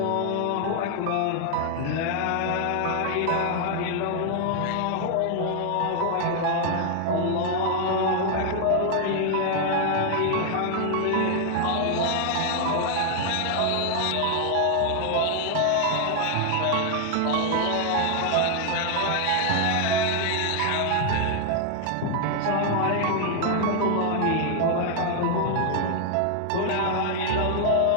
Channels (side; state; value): both; different; correlation 0.00